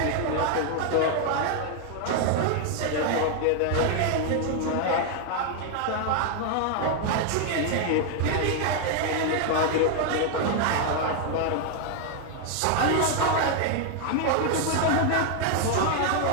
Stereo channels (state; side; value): different; both; correlation 0.00